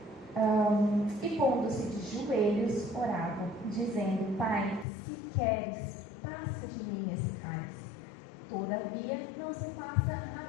E pondo-se de joelhos, orava, dizendo, Pai, se queres, passa de mim esse cálice. Todavia, não se faça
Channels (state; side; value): drops out; right; at 4.9 s